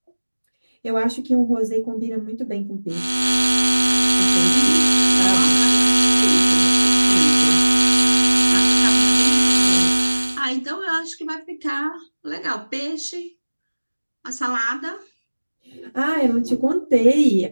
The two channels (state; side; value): inverted; both; correlation -1.00